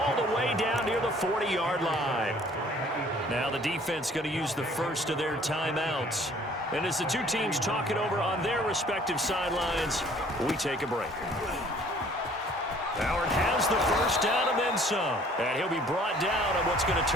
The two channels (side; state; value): both; normal; correlation 0.55